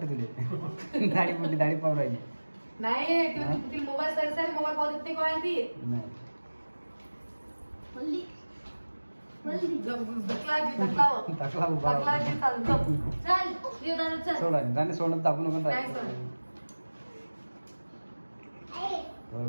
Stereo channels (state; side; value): inverted; both; correlation -1.00